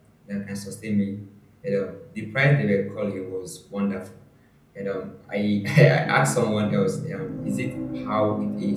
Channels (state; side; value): identical; both; correlation 1.00